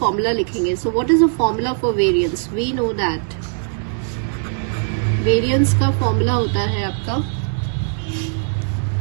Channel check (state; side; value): silent; left; 64 dB below the other